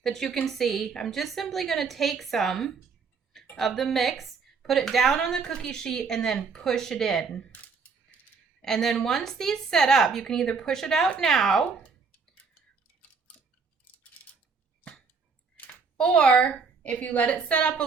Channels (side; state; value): left; quieter; 5.1 dB